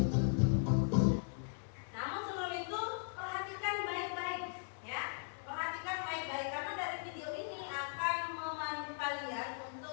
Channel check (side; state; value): right; silent; digital silence